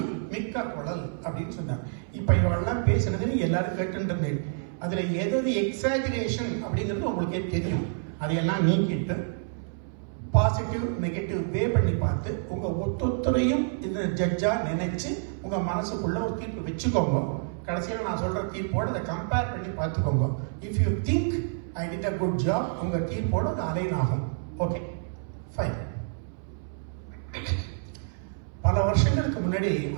மிக்க குழல் அப்படின்னு சொன்னார். இப்ப இவெல்லாம் பேசுனது எல்லாரும் கேட்டுருந்தேன். அதுல எது எக்ஸாஜரேஷன் அப்படிங்கிறது உங்களுக்கே தெரியும். அதையெல்லாம் நீக்கிட்டு பாசிட்டிவ் நெகட்டிவ் வே பண்ணி பார்த்து உங்க ஒத்தொத்தரையும் இந்த ஜட்ஜா நினைச்சு உங்க மனசுக்குள்ள ஒரு தீர்ப்பு வச்சுக்கோங்க. கடைசியில் நான் சொல்ற தீர்ப்போட அதை கம்பேர் பண்ணி பார்த்துக்கோங்க. If you think I did a good job, உங்க தீர்ப்போட அது அலைன் ஆகும். Okay fine. பல வருஷங்களுக்கு முன்னாடி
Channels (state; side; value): silent; left; 59 dB below the other